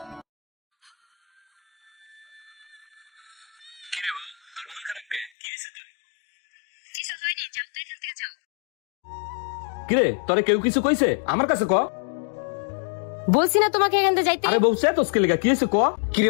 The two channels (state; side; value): drops out; right; at 5.3 s